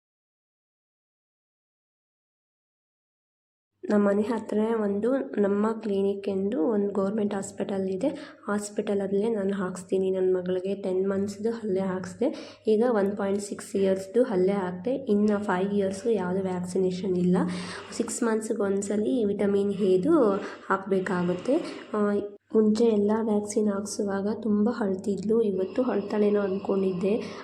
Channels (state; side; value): identical; both; correlation 1.00